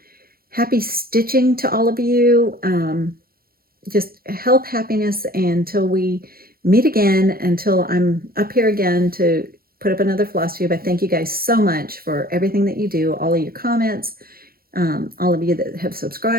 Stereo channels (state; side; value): late; left; 0.43 ms